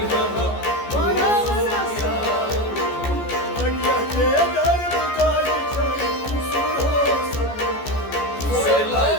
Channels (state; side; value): late; right; 14 ms